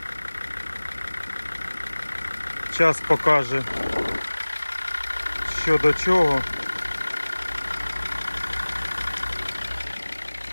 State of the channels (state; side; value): inverted; both; correlation -1.00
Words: Час покаже, що до чого.